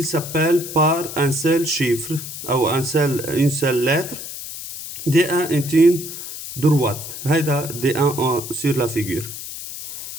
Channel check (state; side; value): noise; left; hiss, 10 dB below the sound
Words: s'appelle par un seul chiffre ou une seule lettre. D1 est une droite. هيدا D1 sur la figure.